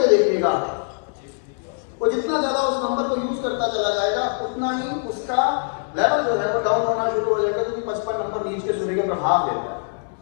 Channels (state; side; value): silent; right; digital silence